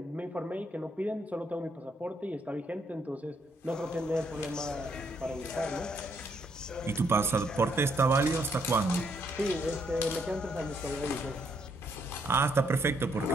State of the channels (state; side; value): normal; both; correlation 0.73